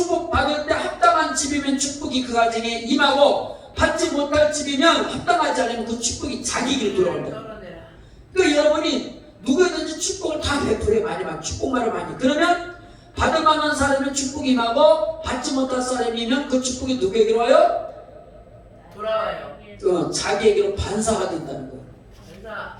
때 합당한 집이면 축복이 그 가정에 임하고 받지 못할 집이면 합당하지 않으면 그 축복이 자기에게 돌아온다. 그러니까 여러분이 누구든지 축복을 다 베풀어요. 많이 축복만을 많이. 그러면 받을 만한 사람은 축복이 임하고 받지 못할 사람이면 그 축복이 누구에게로 와요? 돌아와요. 자기에게로 반사가 된다는 거예요. 반사.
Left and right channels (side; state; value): both; identical; correlation 1.00